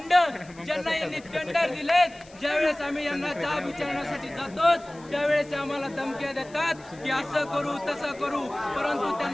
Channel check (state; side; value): noise; left; hiss, 25 dB below the sound